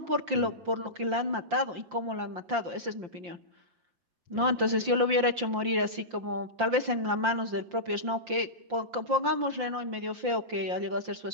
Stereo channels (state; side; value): late; left; 5.7 ms